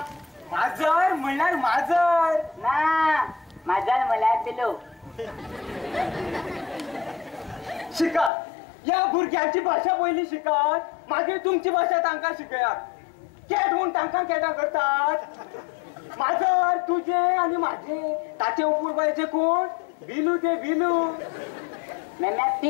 माजर म्हणल्यार माजर ना माझा म्हळ्यार पिलो शिकात या भुरग्यांची भाषा पयली शिकात मागीर तुमची भाषा तांकां शिकयात केट म्हूण तांकां केटां करतात माजर तुझे आनी म्हाजे ताचे उपूरबायचे कोण बिलू ते बिलू मेम्या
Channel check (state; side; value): drops out; right; at 8.3 s